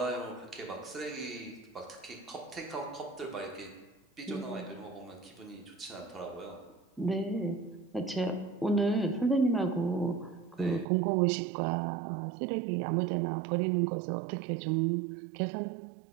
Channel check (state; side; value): drops out; left; at 10.9 s